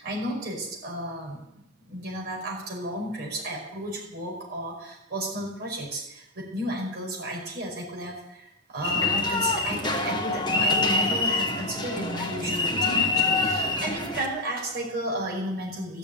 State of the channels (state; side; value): normal; both; correlation 0.05